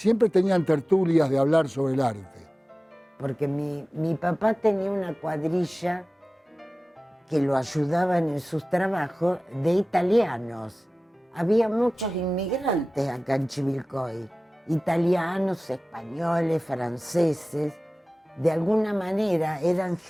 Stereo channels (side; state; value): both; normal; correlation 0.97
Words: tenían tertulias de hablar sobre el arte. Porque mi papá tenía una cuadrilla que lo ayudaban en sus trabajos de italianos. Había muchos inmigrantes acá en Chivilcoy, italianos, españoles, franceses. De alguna manera eran